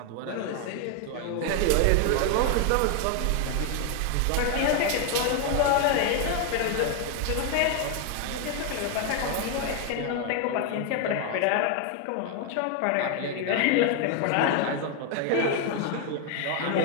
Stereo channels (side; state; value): both; different; correlation 0.01